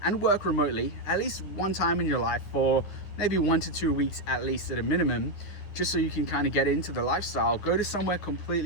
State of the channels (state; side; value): late; right; 11 ms